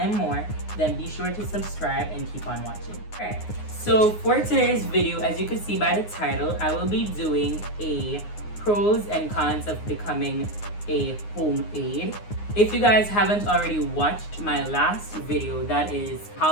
more, then be sure to subscribe and keep on watching. Alright, so for today's video, as you can see by the title, I will be doing a pros and cons of becoming a home aide. If you guys haven't already watched my last video, that is how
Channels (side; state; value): right; late; 9.6 ms